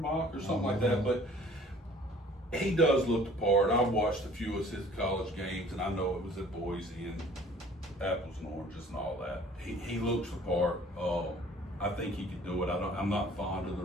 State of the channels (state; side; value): normal; both; correlation 0.52